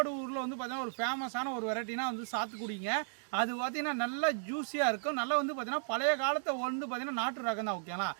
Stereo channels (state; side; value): silent; left; digital silence